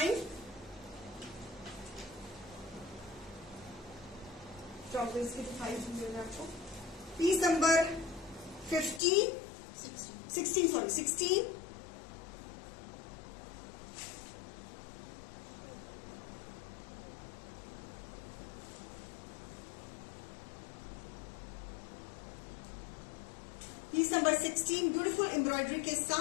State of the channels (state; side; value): drops out; right; at 9.0 s